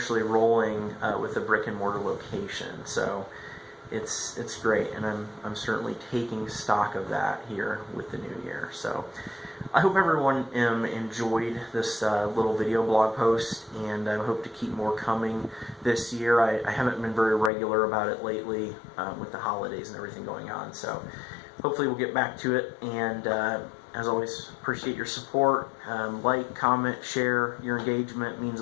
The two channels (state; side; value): drops out; right; at 17.5 s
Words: rolling with a brick and mortar location. So it's great, and I'm certainly taking stock of that here with the new year. So I hope everyone enjoyed this little video blog post, and I hope to keep more coming this year. I haven't been very regular about it lately with the holidays and everything going on, so hopefully we'll get back to it. And as always, appreciate your support. Like, comment, share. Your engagement means